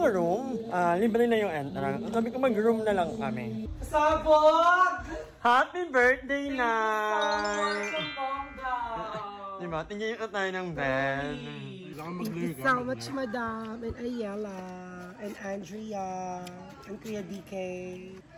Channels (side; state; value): both; identical; correlation 1.00